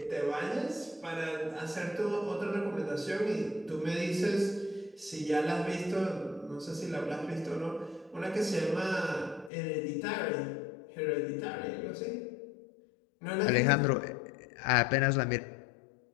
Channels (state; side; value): drops out; right; at 9.5 s